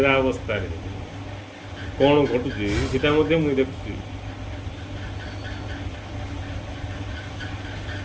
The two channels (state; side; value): identical; both; correlation 1.00